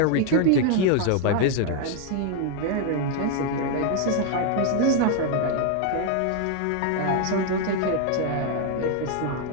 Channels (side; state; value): both; different; correlation 0.00